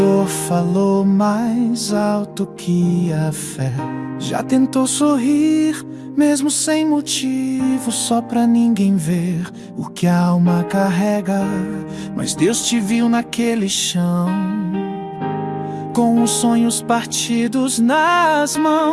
falou mais alto que a fé? Já tentou sorrir mesmo sem motivo, só pra ninguém ver o que a alma carrega? Mas Deus te viu naquele chão, com os sonhos partidos nas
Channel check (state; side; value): identical; both; correlation 1.00